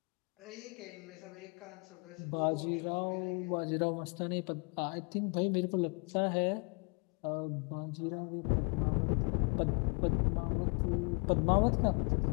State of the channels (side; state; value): right; quieter; 35.2 dB